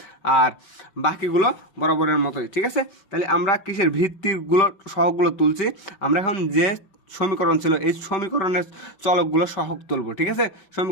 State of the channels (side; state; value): right; late; 5.2 ms